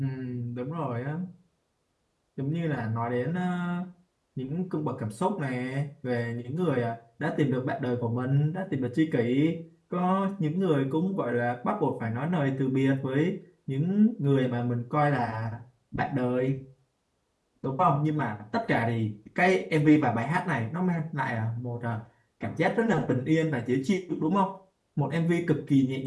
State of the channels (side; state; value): both; identical; correlation 1.00